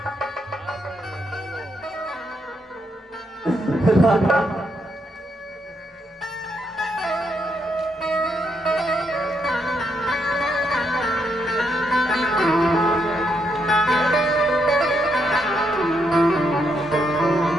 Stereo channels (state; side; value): normal; both; correlation 0.77